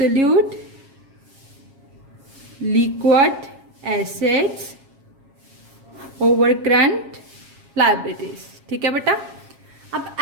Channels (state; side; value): late; left; 7.4 ms